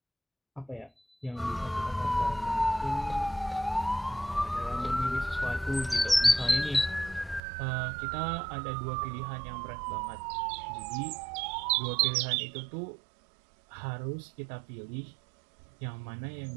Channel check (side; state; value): left; drops out; at 7.4 s